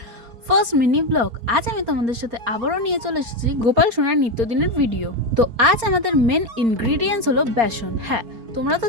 first mini blog. আজ আমি তোমাদের সাথে আবারও নিয়ে চলে এসেছি গোপাল সোনার নিত্যদিনের ভিডিও। তো আজ আমাদের মেন ইনগ্রিডিয়েন্টস হলো বেসন। হ্যাঁ, তোমরা তো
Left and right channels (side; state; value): left; late; 4.3 ms